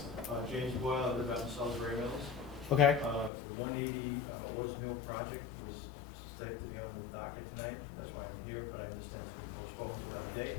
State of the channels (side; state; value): right; drops out; at 3.3 s